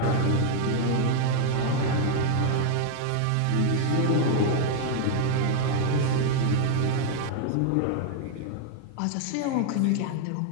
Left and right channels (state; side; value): different; both; correlation 0.00